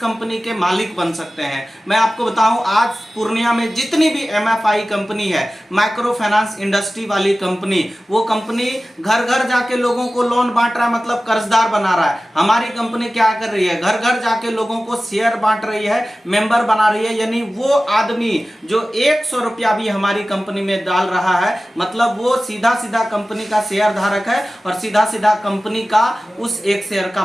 के मालिक बन सकते हैं। मैं आपको बताऊं, आज पूर्णिया में जितनी भी MFI कंपनी है, माइक्रो फाइनेंस इंडस्ट्री वाली कंपनी, वो कंपनी घर घर जाके लोगों को लोन बांट रहा है, मतलब कर्जदार बना रहा है। हमारी कंपनी क्या कर रही है? घर घर जाके लोगों को शेयर बांट रही है, मेंबर बना रही है। यानी वो आदमी जो 100 रुपया भी हमारी कंपनी में डाल रहा है, मतलब वो सीधा सीधा कंपनी का शेयर धारक है और सीधा सीधा सीधा कंपनी का उस एक शेयर का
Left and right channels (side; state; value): both; normal; correlation 0.96